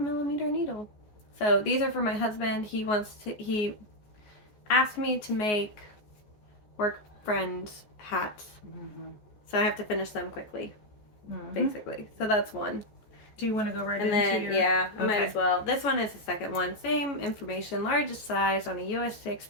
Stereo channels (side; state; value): right; late; 14 ms